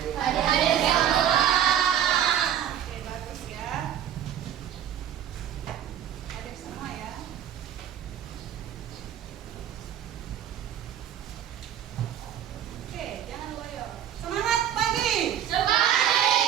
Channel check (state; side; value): quieter; left; 10.2 dB